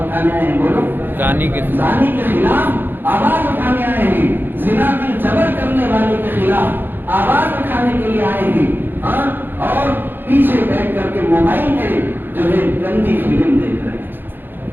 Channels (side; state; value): left; late; 0.096 ms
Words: اٹھانے آئے ہیں؟ بولو۔ زانی کے خلاف آواز اٹھانے آئے ہیں، زنا میں جبر کرنے والے کے خلاف آواز اٹھانے کے لیے آئے ہیں، اور پیچھے بیٹھ کر کے موبائل میں جو ہے گندی فلم دیکھ رہے ہیں۔